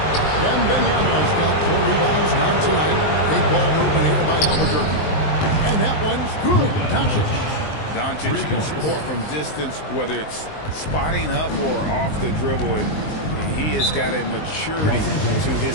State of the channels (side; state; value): right; late; 19 ms